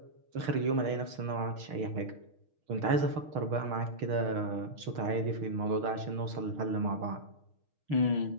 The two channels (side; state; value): left; late; 6.5 ms